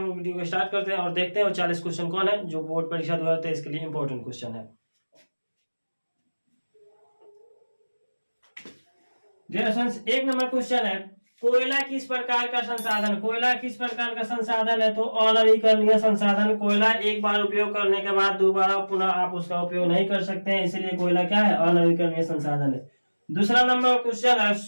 लोग वीडियो को स्टार्ट करते हैं और देखते हैं वो 40 क्वेश्चन कौन है जो बोर्ड परीक्षा 2023 के लिए इंपॉर्टेंट क्वेश्चन है। डियर स्टूडेंट्स, 1 नंबर क्वेश्चन है, कोयला किस प्रकार का संसाधन? कोयला किस प्रकार का संसाधन है? तो अनवीकरणीय संसाधन। कोयला एक बार उपयोग करने के बाद दोबारा पुनः आप उसका उपयोग नहीं कर सकते हैं, इसलिए कोयला क्या है? अनवीकरणीय संसाधन है। दूसरा नंबर क्वेश्चन है,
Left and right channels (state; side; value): inverted; both; correlation -1.00